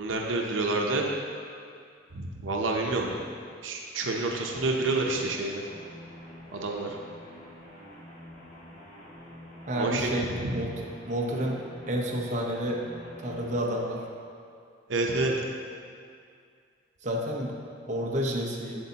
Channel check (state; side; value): normal; both; correlation 0.28